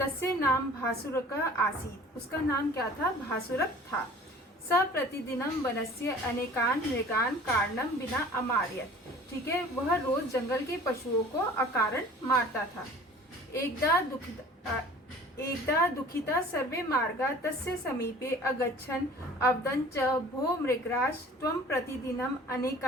नाम भासुरक आसीत्, उसका नाम क्या था, भासुरक था। स प्रतिदिनम वनस्य अनेकान मृगान कारणम बिना अमार्यत, ठीक है, वह रोज जंगल के पशुओं को अकारण मारता था। एकदा दुखिता सर्वे मार्गा तस्य समीपे अगच्छन् अवदन् च भो मृगराज त्वं प्रतिदिनम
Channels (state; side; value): normal; both; correlation 0.46